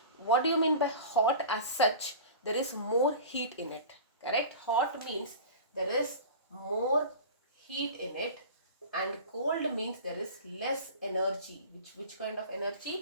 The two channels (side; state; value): both; inverted; correlation -0.36